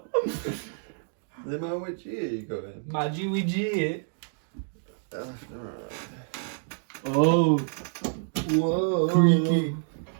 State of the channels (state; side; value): silent; left; digital silence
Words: The man which ear you going? My Jewy G. Left and right. Oh, Whoa. creaky.